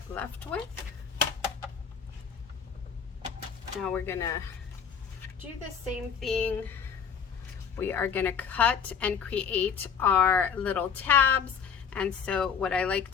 left with. Now we're gonna do the same thing. We are gonna cut and create our little tabs. And so what I like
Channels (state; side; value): quieter; right; 7.0 dB